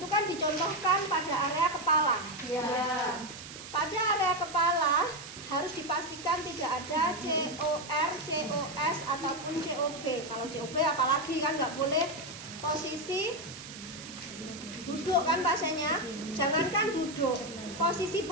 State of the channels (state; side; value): noise; right; hiss, 13 dB below the sound